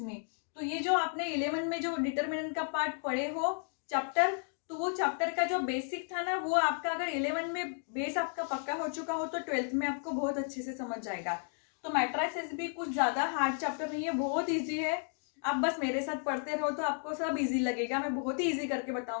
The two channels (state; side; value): silent; right; 55 dB below the other